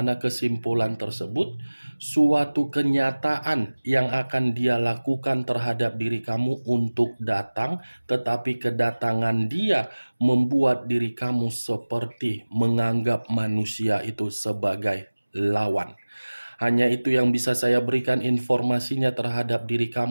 kesimpulan tersebut suatu kenyataan yang akan dia lakukan terhadap diri kamu untuk datang, tetapi kedatangan dia membuat diri kamu seperti menganggap manusia itu sebagai lawan. Hanya itu yang bisa saya berikan informasinya terhadap diri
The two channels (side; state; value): both; inverted; correlation -1.00